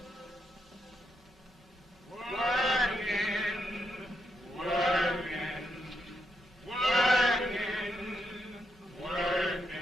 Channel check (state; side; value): normal; both; correlation 0.81